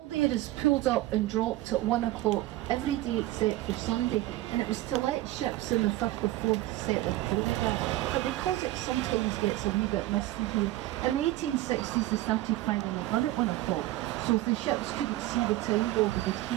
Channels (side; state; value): left; quieter; 16.4 dB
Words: there is pulled up and dropped at 1 o'clock every day except for Sunday, and it was to let ships in the 5th or 4th set their chronographs. But because it sometimes gets a wee bit misty here, in the 1860s they started firing a gun at 1 o'clock, so if the ships couldn't see the time board they would